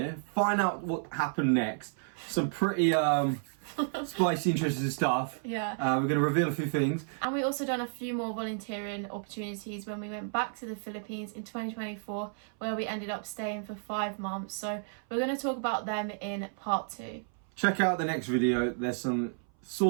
find out what happened next. Some pretty spicy, interesting stuff. Yeah. We're going to reveal a few things. And we also done a few more volunteering opportunities when we went back to the Philippines in 2024, where we ended up staying for 5 months. So we're going to talk about them in part 2. Check out the next video. There's some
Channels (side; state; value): left; silent; 56 dB below the other